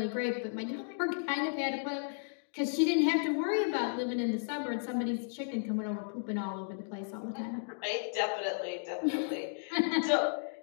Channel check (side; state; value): right; silent; digital silence